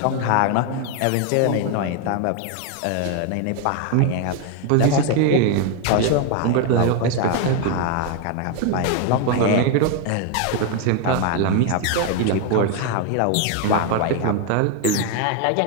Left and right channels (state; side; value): different; both; correlation 0.01